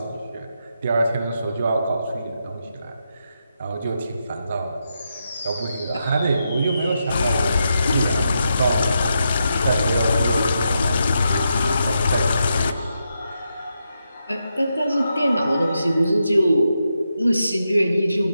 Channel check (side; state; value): both; inverted; correlation -0.84